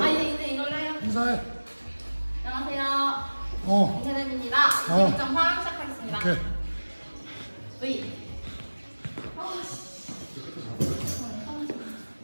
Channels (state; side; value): inverted; both; correlation -1.00